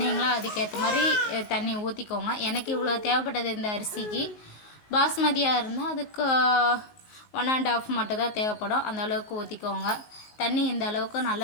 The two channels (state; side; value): late; right; 19 ms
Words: அதுக்கேற்ற மாதிரி தண்ணி ஊற்றிக்கோங்க. எனக்கு இவ்வளோ தேவைப்பட்டது இந்த அரிசிக்கு. பாஸ்மதியாக இருந்தால் அதுக்கு 1.5 மட்டும் தான் தேவைப்படும். அந்த அளவுக்கு ஊற்றிக்கோங்க. தண்ணி இந்த அளவுக்கு